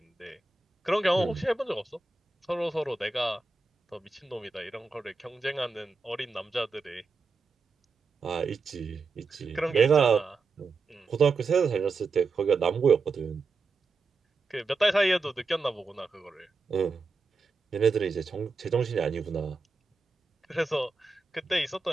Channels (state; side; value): quieter; left; 4.0 dB